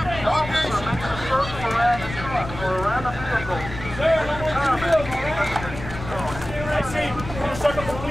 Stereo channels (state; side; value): noise; left; rumble, 11 dB below the sound